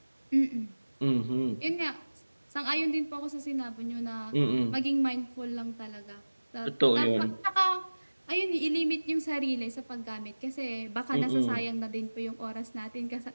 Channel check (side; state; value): both; inverted; correlation -1.00